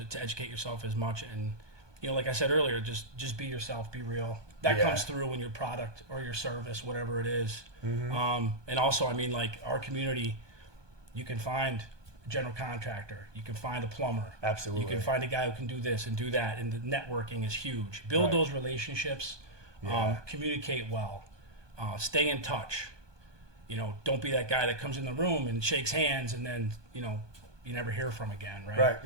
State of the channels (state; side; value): late; left; 1.2 ms